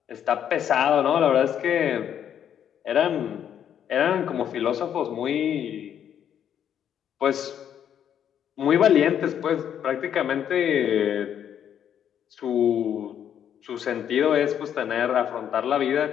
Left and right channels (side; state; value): right; quieter; 9.3 dB